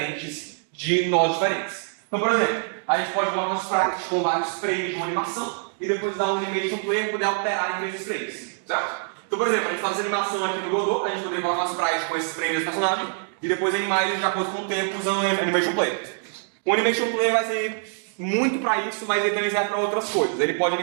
de nodes diferentes. Então, por exemplo, a gente pode colocar um sprite com vários frames de uma animação e depois dar um Animation Player para poder alterar entre esses frames, certo? Então, por exemplo, a gente faz animação aqui no Godot, a gente poderia colocar um sprite com esses frames do personagem e depois animar eles de acordo com o tempo usando o Animation Player. O Animation Player vai ser muito para isso, mas ele também serve para outras coisas. Ele pode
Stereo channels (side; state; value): left; silent; 62 dB below the other